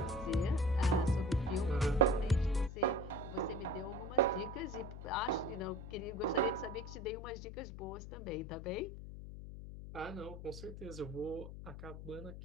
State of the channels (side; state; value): left; noise; hum, 10 dB below the sound